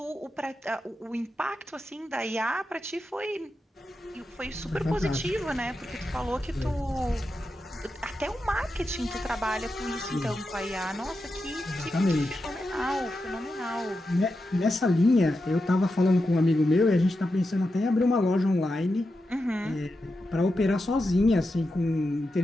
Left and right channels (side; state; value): both; normal; correlation 0.89